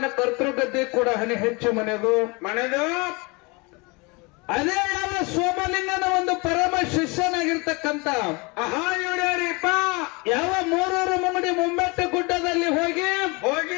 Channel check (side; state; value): right; quieter; 27.8 dB